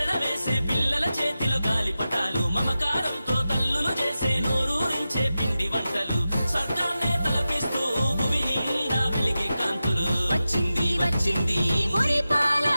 వేసే పిల్లల చేతిలో గాలిపటాలు మమకారంతో తల్లులు చేసే నోరూరించే పిండి వంటలు స్వర్గాన్నే తలపిస్తూ భూమి నిండా వెలిగే కాంతులు వచ్చింది వచ్చింది మురిపాల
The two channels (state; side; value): inverted; both; correlation -0.93